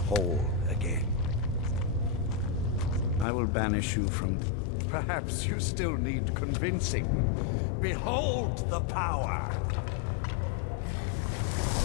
again. I will banish you from... Perhaps you still need convincing. Behold the power!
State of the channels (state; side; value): drops out; right; at 3.2 s